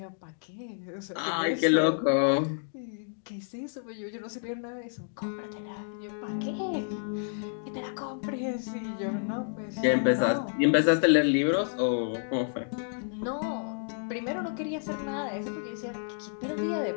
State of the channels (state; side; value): silent; right; digital silence